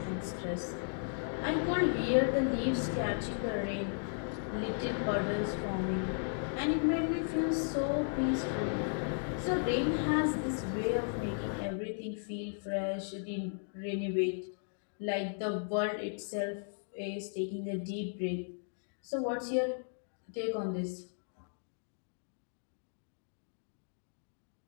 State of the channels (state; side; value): silent; right; digital silence